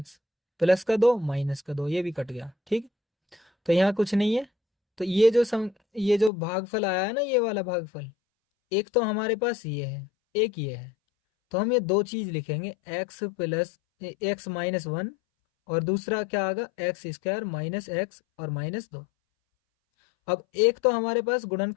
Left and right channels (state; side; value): drops out; right; at 6.3 s